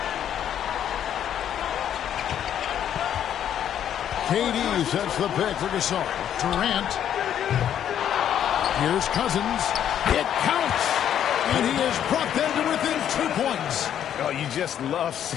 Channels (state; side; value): quieter; right; 9.9 dB